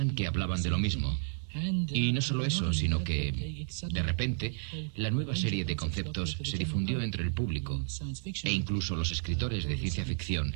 que hablaban de lo mismo. Y no solo eso, sino que, de repente, la nueva serie de conceptos se difundió entre el público e incluso los escritores de ciencia ficción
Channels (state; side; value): silent; left; 57 dB below the other